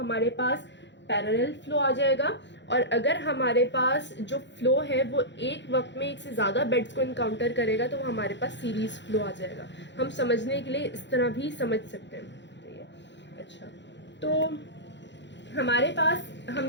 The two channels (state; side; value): late; right; 0.52 ms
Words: पास पैरेलल फ्लो आ जाएगा, और अगर हमारे पास जो फ्लो है वो एक वक्त में एक से ज़्यादा बेड्स को इनकाउंटर करेगा तो वो हमारे पास सीरीज फ्लो आ जाएगा। हम समझने के लिए इस तरह भी समझ सकते हैं। ठीक है, अच्छा, तो हमारे पास